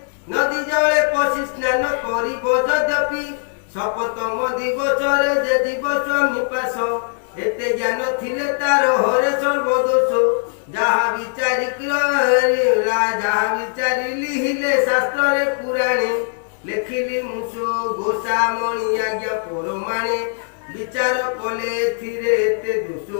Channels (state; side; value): silent; right; digital silence